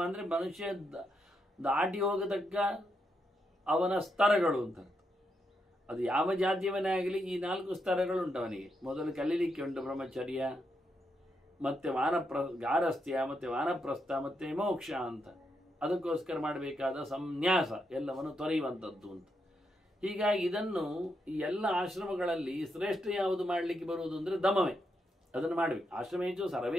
ಅಂದರೆ ಮನುಷ್ಯ ದಾಟಿ ಹೋಗತಕ್ಕ ಅವನ ಸ್ತರಗಳು ಅಂತ. ಅದು ಯಾವ ಜಾತಿಯವನೇ ಆಗಲಿ ಈ 4 ಸ್ತರಗಳು ಉಂಟು ಅವನಿಗೆ. ಮೊದಲು ಕಲೀಲಿಕ್ಕೆ ಉಂಟು ಬ್ರಹ್ಮಚರ್ಯ, ಮತ್ತೆ ಗಾರಸ್ಥ್ಯ, ಮತ್ತೆ ವಾನಪ್ರಸ್ಥ, ಮತ್ತೆ ಮೋಕ್ಷ ಅಂತ. ಅದಕ್ಕೋಸ್ಕರ ಮಾಡಬೇಕಾದ ಸಂನ್ಯಾಸ ಎಲ್ಲವನ್ನು ತೊರೆಯುವಂಥದ್ದು ಅಂತ. ಹೀಗಾಗಿ ಇದನ್ನು ಈ ಎಲ್ಲ ಆಶ್ರಮಗಳಲ್ಲಿ ಶ್ರೇಷ್ಠ ಯಾವುದು ಮಾಡಲಿಕ್ಕೆ ಬರುವುದು ಅಂದರೆ ದಮವೇ. ಅದನ್ನು ಮಾಡಬೇಕು. ಆಶ್ರಮೇಶು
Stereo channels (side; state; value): both; normal; correlation 0.81